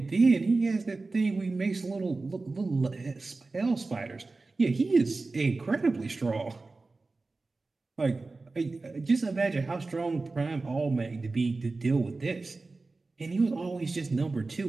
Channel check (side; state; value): left; quieter; 3.6 dB